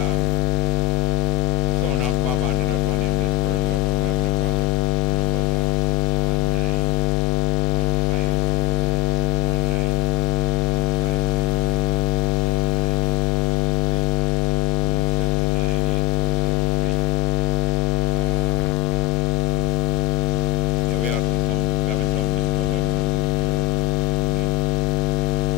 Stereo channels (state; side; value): quieter; right; 19.5 dB